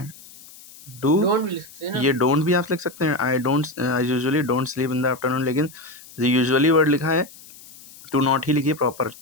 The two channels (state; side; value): noise; left; hiss, 20 dB below the sound